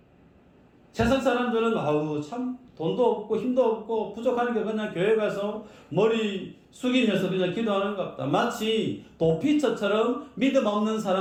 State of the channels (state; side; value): identical; both; correlation 1.00